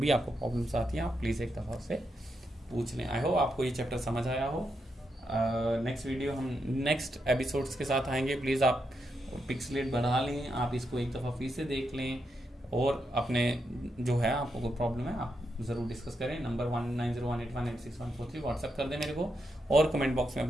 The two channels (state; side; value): normal; both; correlation 0.83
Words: आपको प्रॉब्लम्स आती हैं आप प्लीज़ एक दफ़ा से पूछ लें। आई होप आपको ये चैप्टर समझ आया हो। नेक्स्ट वीडियो हम नेक्स्ट एपिसोड्स के साथ आएंगे। प्लीज़ आप पिक्सलेट बढ़ा लें, आप इसको एक दफ़ा फिर से देख लें और अपने जो है आपको कोई प्रॉब्लम है आप ज़रूर डिस्कस करें। नंबर 190181864143 व्हाट्सएप कर दें मेरे को, और कमेंट बॉक्स में